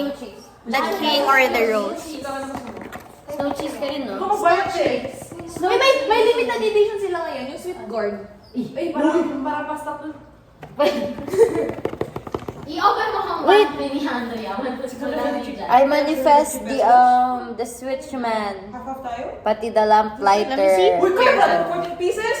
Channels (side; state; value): both; identical; correlation 1.00